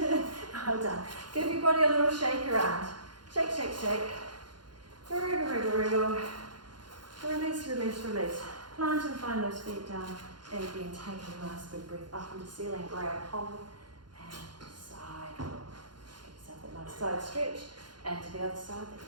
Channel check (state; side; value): late; left; 0.71 ms